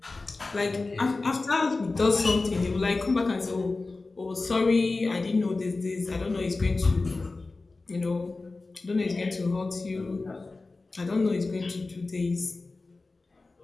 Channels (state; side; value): quieter; right; 3.5 dB